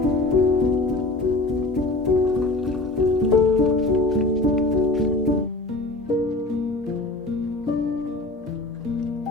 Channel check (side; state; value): right; quieter; 3.0 dB